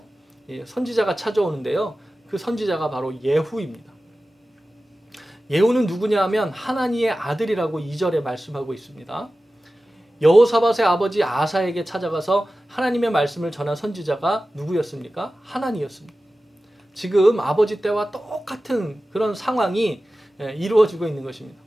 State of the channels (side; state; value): both; normal; correlation 0.95